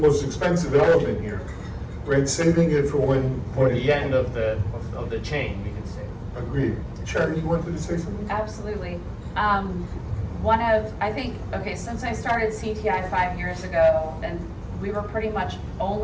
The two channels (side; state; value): both; identical; correlation 1.00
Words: most expensive element here, right? Saving it for when... For the end of the chain, we could say. Agreed. Sharon, you wanted to say something? Absolutely. Since I started CTI 5 years ago, and we were pretty much